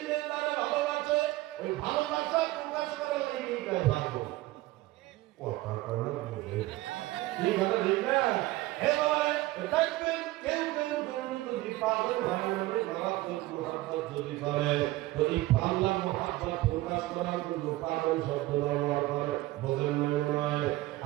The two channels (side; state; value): left; quieter; 18.1 dB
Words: তারা ভালোবাসে, ওই ভালোবাসা প্রকাশ করার লেগে ভালো কথা কয় না বুঝে ঠিক আছে ঠিক না? হে বাবা দেখবেন কেউ কেউ যদি পাগল হয় না মারাত্মক মুহাব্বত যদি করে, যদি আল্লাহ মুহাব্বত প্রকাশ করার জন্য পাগল শব্দ ব্যবহার করে, বোঝেন নয়?